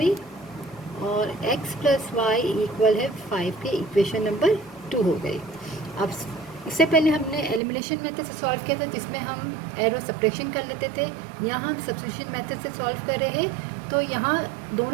और x + y = 5 के इक्वेशन नंबर 2 हो गई। अब इससे पहले हमने एलिमिनेशन मेथड से सॉल्व किया था, जिसमें हम एरो सब्ट्रैक्शन कर लेते थे। यहाँ हम सब्स्टिट्यूशन मेथड से सॉल्व कर रहे हैं। तो यहाँ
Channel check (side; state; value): left; drops out; at 7.6 s